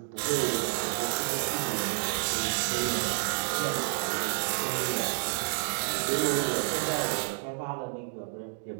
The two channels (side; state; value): left; silent; digital silence